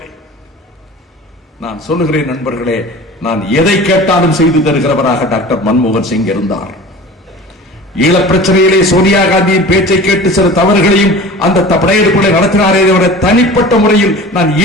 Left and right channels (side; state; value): both; normal; correlation 0.39